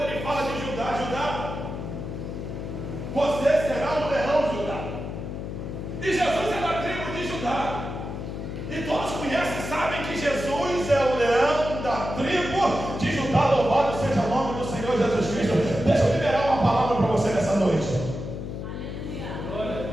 ele fala de Judá, você será um leão, Judá. E Jesus é da tribo de Judá. E todos conhecem e sabem que Jesus é o leão da tribo de Judá. Louvado seja o nome do Senhor Jesus Cristo. Deixa eu liberar uma palavra para você nessa noite. Aleluia. Glória a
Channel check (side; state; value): left; noise; hum, 6 dB below the sound